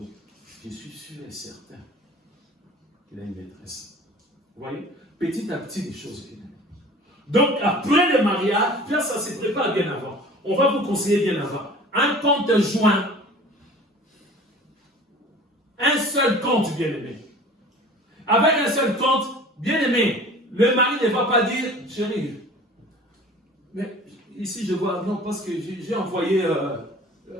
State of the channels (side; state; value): both; normal; correlation 0.44